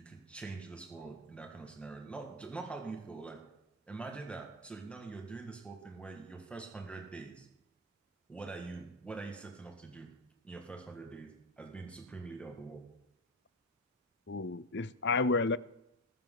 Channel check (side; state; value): both; normal; correlation 0.15